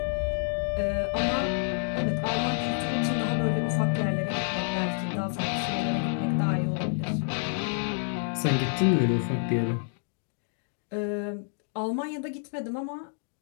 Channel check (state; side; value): silent; right; digital silence